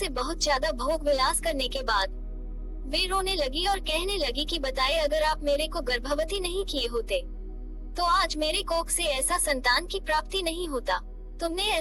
बहुत ज्यादा भोग विलास करने के बाद वे रोने लगी और कहने लगी कि बताए, अगर आप मेरे को गर्भवती नहीं किए होते तो आज मेरे कोख से ऐसा संतान की प्राप्ति नहीं होता। तुमने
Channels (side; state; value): both; identical; correlation 1.00